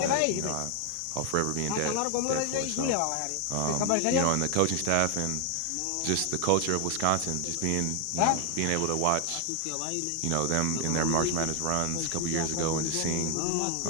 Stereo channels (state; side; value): different; both; correlation 0.00